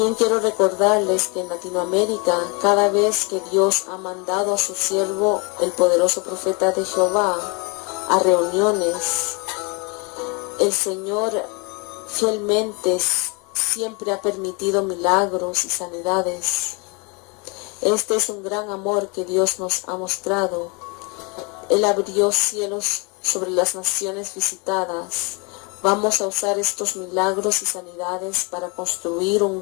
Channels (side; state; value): right; quieter; 31.1 dB